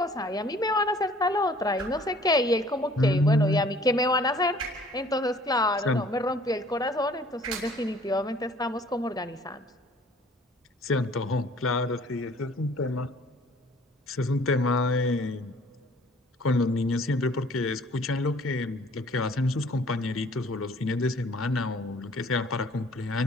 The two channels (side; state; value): both; normal; correlation 0.54